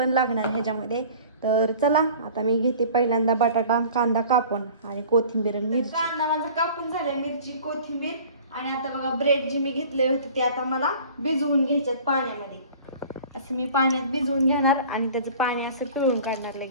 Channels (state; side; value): inverted; both; correlation -0.45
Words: लागणार ह्याच्यामध्ये. तर चला आता मी घेते पहिल्यांदा बटाटा कांदा कापून आणि कोथिंबीर आणि मिरची. कांदा माझा कापून झालाय, मिरची कोथिंबीर. आणि आता बघा ब्रेड जे मी घेतले होते ते आता मला भिजवून घ्यायच्यात पाण्यामध्ये. असं मी पाण्यात भिजवून घेणार आणि त्याचं पाणी असं पिळून काढणार.